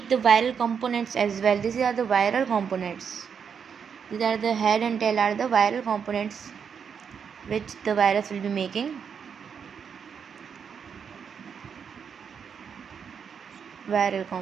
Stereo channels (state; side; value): quieter; left; 6.9 dB